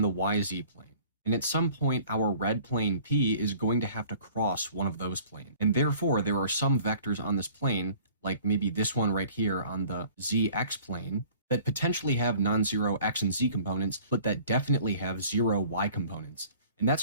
the YZ plane. And at some point, our red plane P is going to have to cross one of those planes. And therefore, there are some vectors on this plane, like maybe this one right here on the ZX plane, that potentially have non-zero X and Z components, but that definitely have zero Y components. And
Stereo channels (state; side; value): inverted; both; correlation -0.50